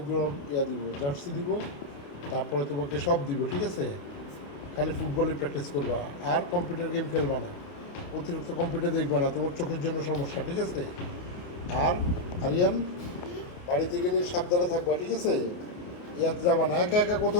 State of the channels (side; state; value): right; late; 28 ms